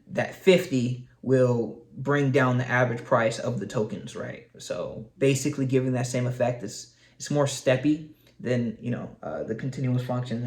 that 50 will bring down the average price of the tokens, right? So basically giving that same effect. It's more steppy than, the continuous function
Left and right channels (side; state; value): both; identical; correlation 1.00